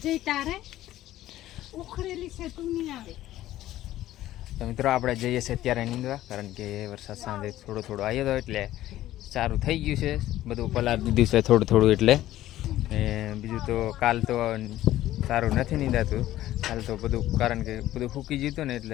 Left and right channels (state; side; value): quieter; right; 14.3 dB